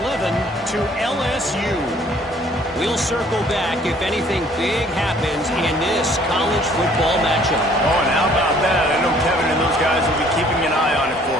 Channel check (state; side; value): normal; both; correlation 0.58